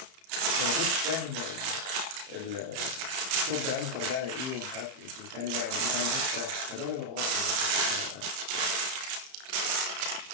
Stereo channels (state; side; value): late; left; 31 ms